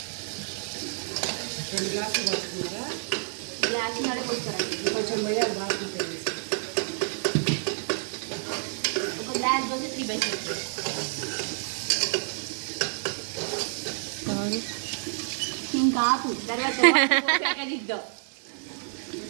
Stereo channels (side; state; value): left; silent; digital silence